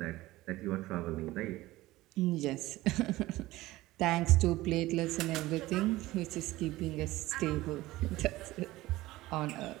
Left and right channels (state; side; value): quieter; left; 17.8 dB